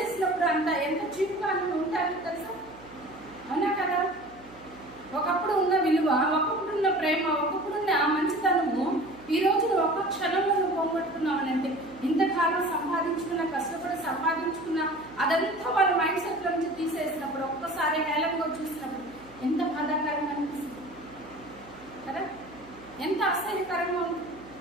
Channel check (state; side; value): noise; right; hum, 23 dB below the sound